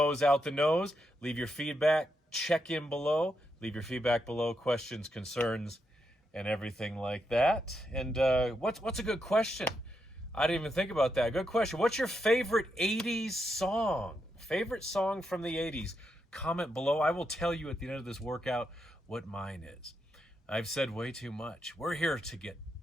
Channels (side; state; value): both; normal; correlation 0.82